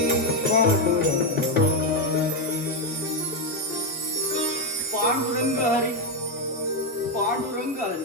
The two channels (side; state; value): both; normal; correlation 0.06